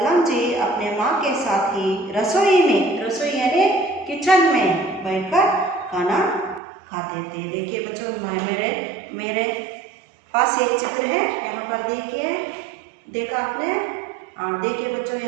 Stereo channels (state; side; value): drops out; left; at 6.6 s